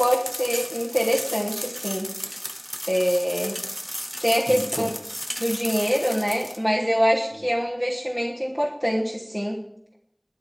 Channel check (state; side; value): identical; both; correlation 1.00